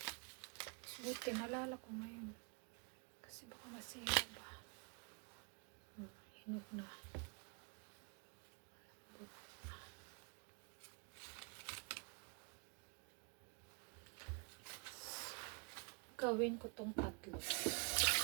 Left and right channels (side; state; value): left; quieter; 38.2 dB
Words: Buti, nalala ko ngayon. Kasi baka masira ba. Hinog na. Gawin ko tong tatlo.